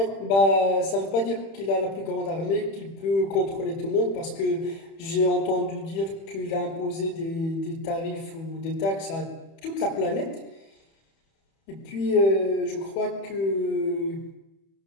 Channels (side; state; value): right; late; 31 ms